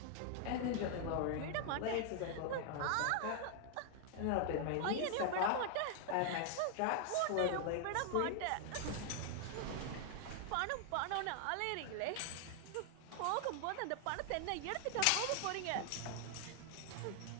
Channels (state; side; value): different; both; correlation 0.00